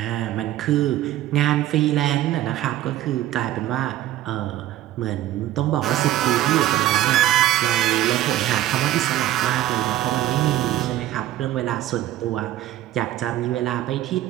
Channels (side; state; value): left; quieter; 13.6 dB